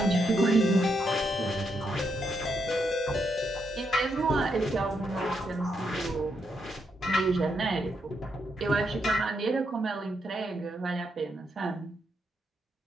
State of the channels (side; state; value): both; normal; correlation 0.80